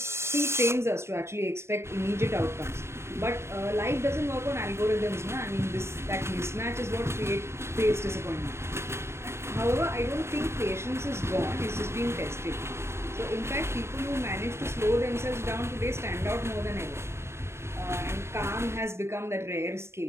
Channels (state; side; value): late; left; 0.13 ms